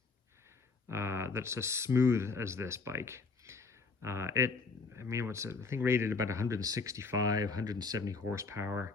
that's as smooth as this bike. I mean, what's it? I think rated about 165, 170 horsepower.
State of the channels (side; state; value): right; quieter; 4.3 dB